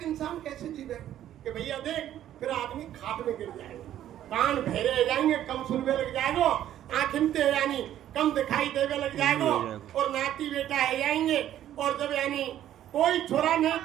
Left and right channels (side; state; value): left; quieter; 11.8 dB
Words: इंसान कैसे जीवे? कि भैया देख फिर आदमी खाट में गिर जाएगा, कान बहरे हो जाएंगे, कम सुनने लग जाएगो, आँखें यानी कम दिखाई देवे लग जाएगो, और नाती बेटा है जाएंगे, और जब यानी कोई छोरा ने